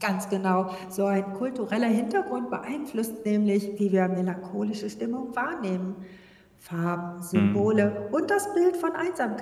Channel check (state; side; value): identical; both; correlation 1.00